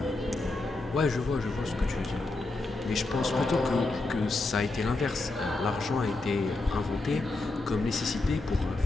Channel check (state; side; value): quieter; right; 3.2 dB